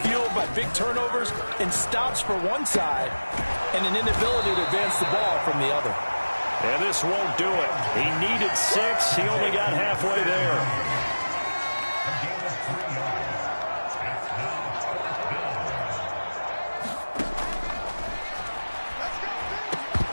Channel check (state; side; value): inverted; both; correlation -1.00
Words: by big turnovers and stops for one side and an inability to advance the ball from the other. And this won't do it. He needed 6. He only got halfway there.